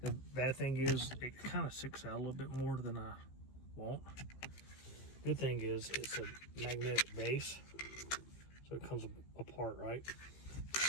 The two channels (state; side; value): late; right; 15 ms